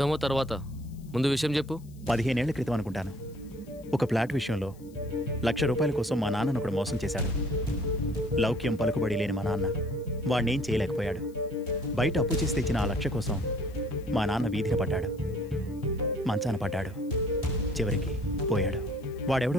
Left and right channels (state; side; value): noise; left; hiss, 28 dB below the sound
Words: తర్వాత, ముందు విషయం చెప్పు. 15 ఏళ్ల క్రితం అనుకుంటాను, ఒక ఫ్లాట్ విషయంలో ₹1,00,000 కోసం మా నాన్నను ఒకడు మోసం చేశాడు. లౌక్యం పలుకుబడి లేని మా నాన్న వాడినేం చేయలేకపోయాడు. బయట అప్పు చేసి తెచ్చిన ఆ 1,00,000 కోసం మా నాన్న వీధిన పడ్డాడు, మంచాన పడ్డాడు, చివరికి పోయాడు.